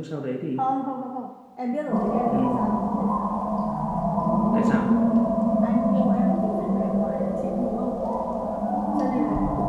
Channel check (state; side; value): identical; both; correlation 1.00